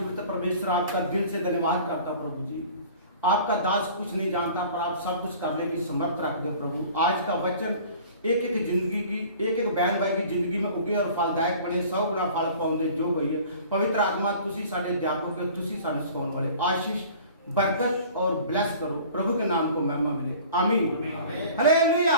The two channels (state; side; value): inverted; both; correlation -0.46